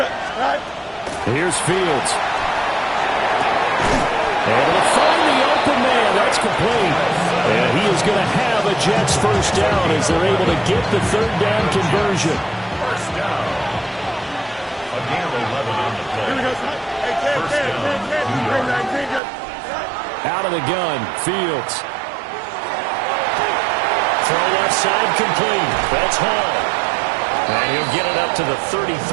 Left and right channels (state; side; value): drops out; left; at 19.2 s